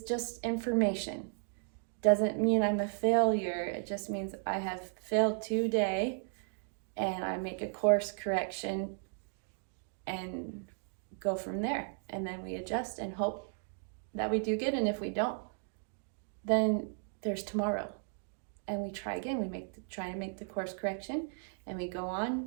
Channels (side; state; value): left; silent; 54 dB below the other